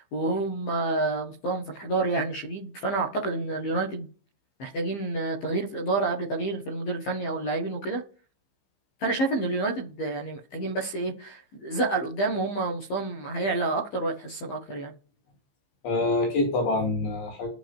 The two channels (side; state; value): right; late; 15 ms